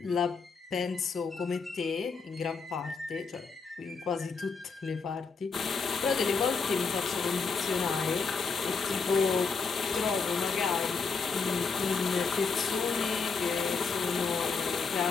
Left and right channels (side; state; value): right; quieter; 4.9 dB